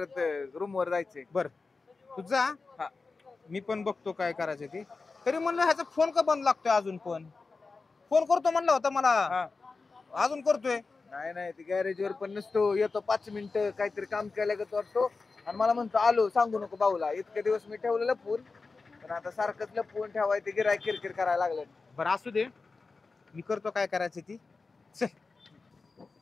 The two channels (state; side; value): quieter; right; 4.1 dB